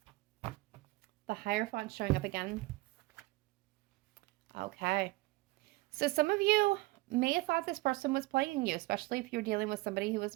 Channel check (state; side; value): quieter; left; 21.5 dB